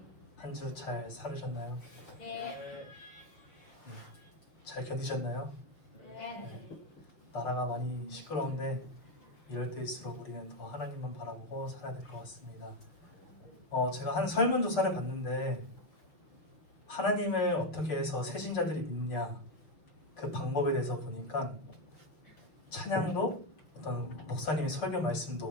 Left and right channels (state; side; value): late; right; 6.5 ms